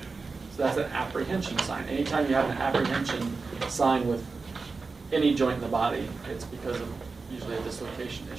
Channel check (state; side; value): quieter; left; 4.3 dB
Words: So that's an apprehension sign. Anytime you have an apprehension sign with any joint in the body, it's because of usually a dislocation